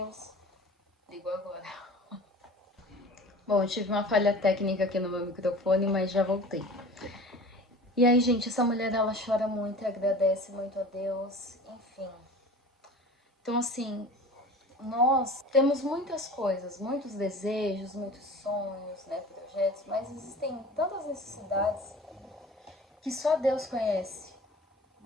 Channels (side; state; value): both; normal; correlation 0.40